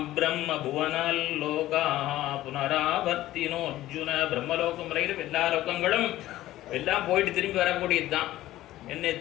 பிரம்ம புவனால் லோகா புனராவர்த்தினோ அர்ஜுன. பிரம்மலோகம் வரையிலும் எல்லா லோகங்களும் எல்லாம் போயிட்டு திரும்பி வரக்கூடியது தான் என்ன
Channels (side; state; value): right; quieter; 15.1 dB